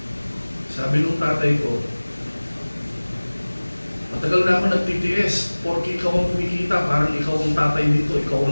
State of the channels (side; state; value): both; inverted; correlation -1.00